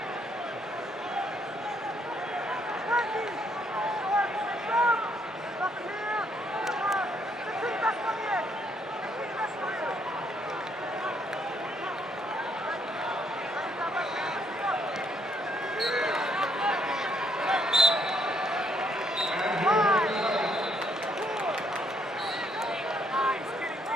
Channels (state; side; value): normal; both; correlation 0.70